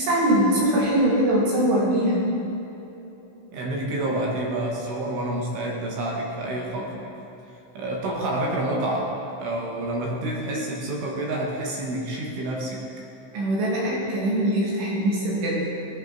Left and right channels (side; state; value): left; late; 16 ms